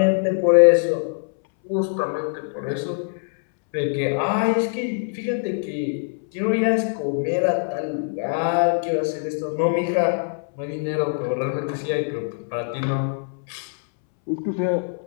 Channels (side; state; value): right; silent; 63 dB below the other